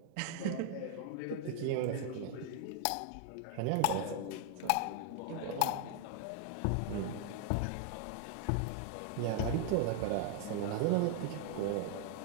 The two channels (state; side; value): different; both; correlation 0.00